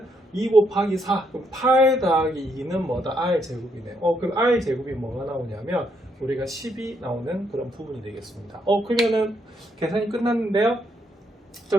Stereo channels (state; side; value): normal; both; correlation 0.75